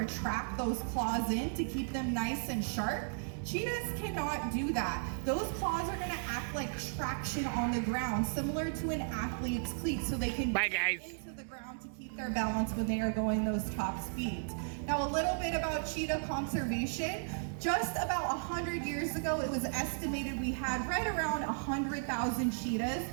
those claws in to keep them nice and sharp. Cheetahs cannot do that. Those claws are gonna act like traction on the ground, similar to an athlete's cleat, so they can Bye, guys. into the ground to keep their balance when they are going those top speeds. Now, a little bit about cheetah conservation. Just about 100 years ago, it was estimated we had right around 100,000 cheetahs.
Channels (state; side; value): silent; left; digital silence